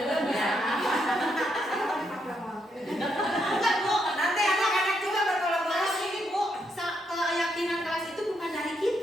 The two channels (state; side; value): normal; both; correlation 0.78